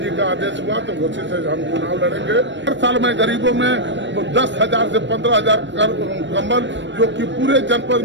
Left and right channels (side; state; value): left; late; 0.53 ms